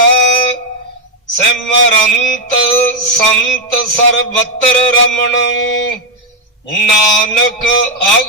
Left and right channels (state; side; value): normal; both; correlation 0.03